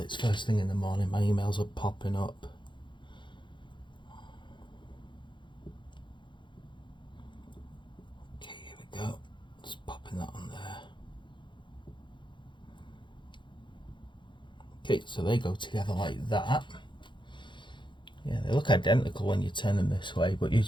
first thing in the morning. My emails are popping up. Okay, here we go. Just popping that on there. Okay, so they go together like that. Yeah, they look identical when you turn them this way, but you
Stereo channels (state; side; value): late; right; 0.23 ms